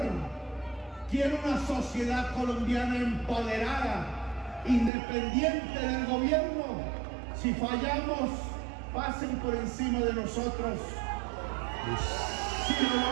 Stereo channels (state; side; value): drops out; left; at 4.9 s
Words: Quiere una sociedad colombiana empoderada, independiente del gobierno. Si fallamos, pasen por encima de nosotros. Si lo